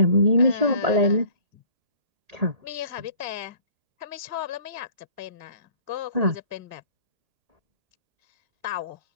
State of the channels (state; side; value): late; left; 1.8 ms